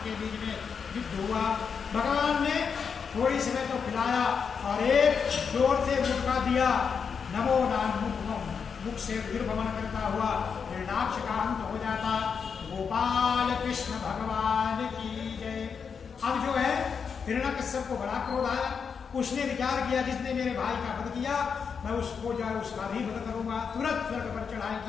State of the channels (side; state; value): right; quieter; 6.2 dB